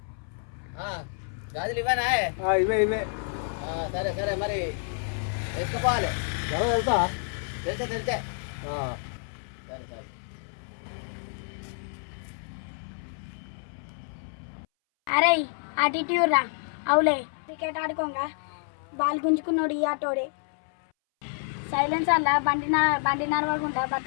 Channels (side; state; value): right; silent; 59 dB below the other